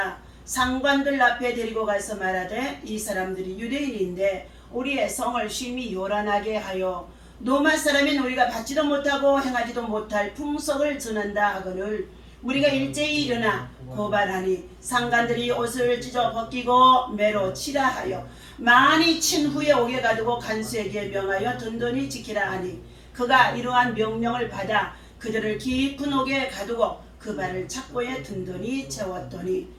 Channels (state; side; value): identical; both; correlation 1.00